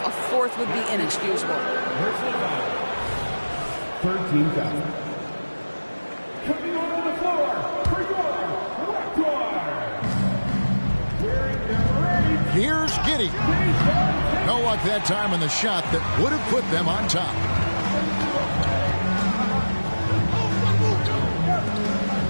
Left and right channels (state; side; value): inverted; both; correlation -1.00